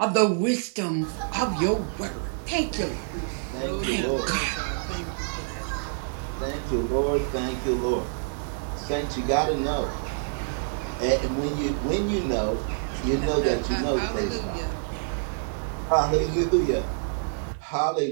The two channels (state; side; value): silent; left; 60 dB below the other